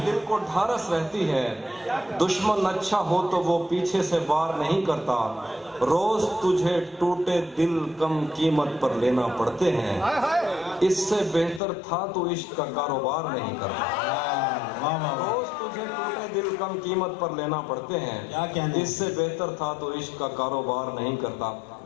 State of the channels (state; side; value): drops out; right; at 11.6 s